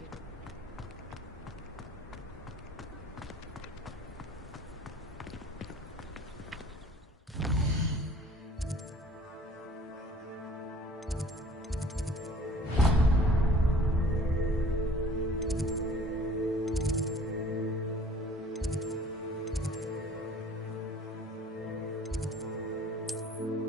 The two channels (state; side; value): normal; both; correlation 0.51